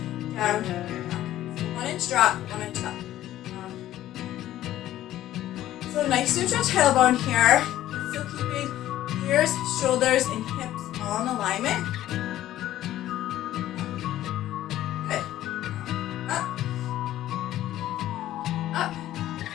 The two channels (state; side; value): quieter; right; 13.5 dB